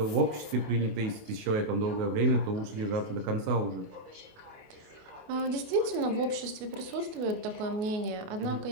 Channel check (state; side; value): late; left; 28 ms